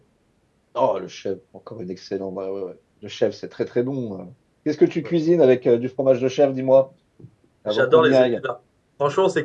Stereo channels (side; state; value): both; identical; correlation 1.00